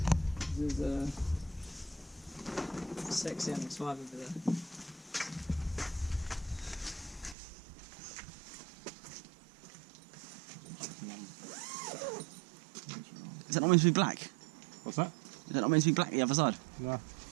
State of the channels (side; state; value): left; drops out; at 7.4 s